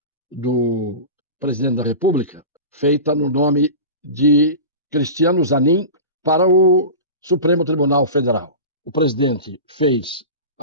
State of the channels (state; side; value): inverted; both; correlation -0.30